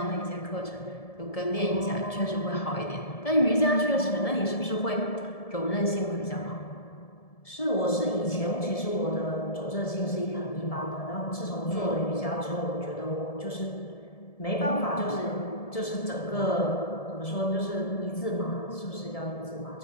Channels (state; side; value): late; right; 1.7 ms